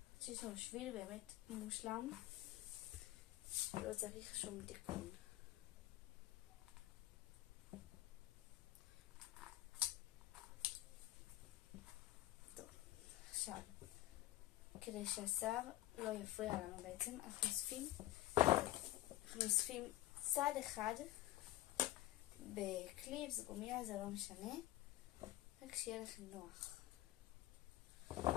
שיש לנו שביל באמת מושלם, לא צריך שום תיקון. טוב, עכשיו, כדי שהשיער לא יפריע לנו בעצם, אנחנו אוספים צד אחד בקליפס, גומיה, זה לא משנה, רק שיהיה לכם נוח.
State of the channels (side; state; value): right; quieter; 15.9 dB